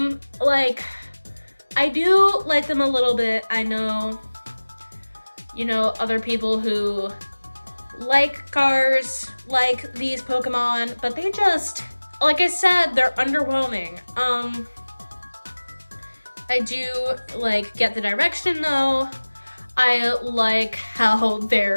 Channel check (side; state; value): both; inverted; correlation -1.00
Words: I do like them a little bit. I know, you know, other people who like cars, like these Pokemon, but they just, like I said, they're underwhelming. I do like get the direction though. I like how